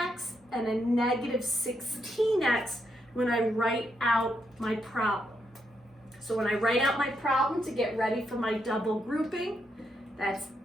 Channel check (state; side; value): normal; both; correlation 0.80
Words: and a -16x when I write out my problem. So when I write out my problem to get ready for my double grouping, that's